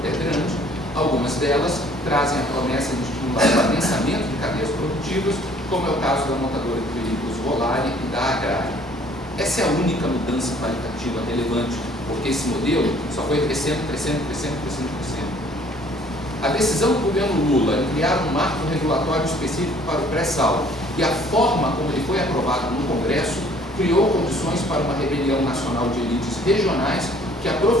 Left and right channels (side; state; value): both; normal; correlation 0.57